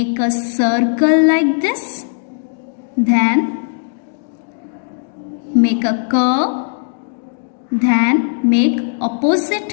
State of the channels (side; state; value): right; silent; digital silence